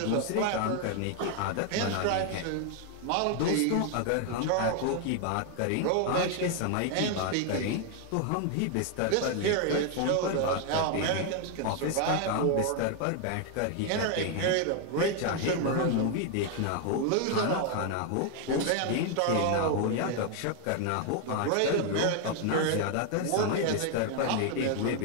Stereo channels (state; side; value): different; both; correlation 0.00